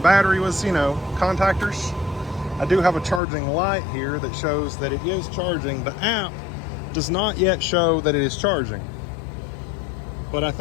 was, you know, contactors. I do have a charging light here that shows that it is charging. The app does not yet show that it is charging. But I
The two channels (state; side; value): drops out; right; at 3.2 s